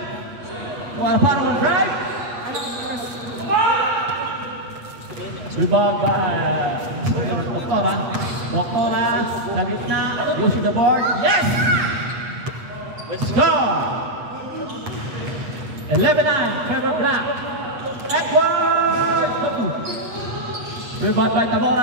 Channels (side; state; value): left; late; 8.2 ms